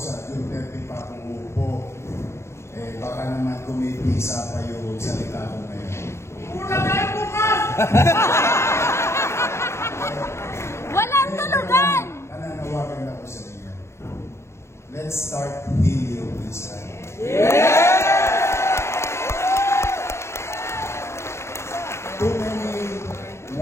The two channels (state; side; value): late; right; 0.13 ms